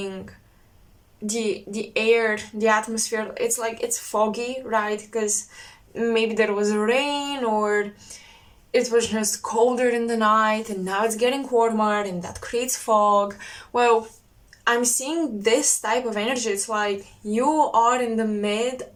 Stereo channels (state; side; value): identical; both; correlation 1.00